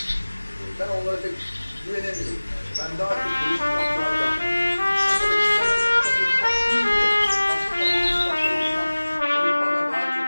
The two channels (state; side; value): inverted; both; correlation -1.00